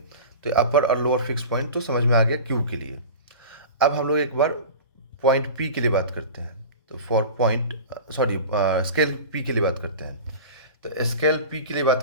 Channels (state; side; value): inverted; both; correlation -0.34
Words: अपर और लोअर फिक्स पॉइंट तो समझ में आ गया क्यू के लिए। अब हम लोग एक बार पॉइंट पी के लिए बात करते हैं। तो for point sorry scale P के लिए बात करते हैं। तो स्केल पी के लिए बात